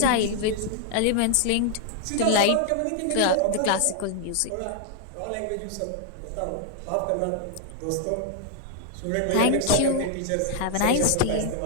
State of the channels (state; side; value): different; both; correlation 0.00